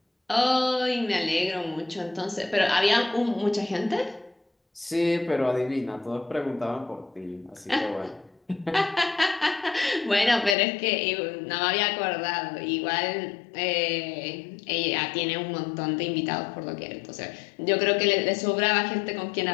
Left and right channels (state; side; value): drops out; right; at 10.6 s